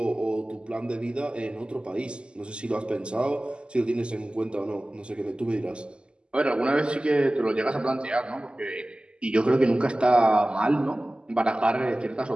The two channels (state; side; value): late; left; 0.050 ms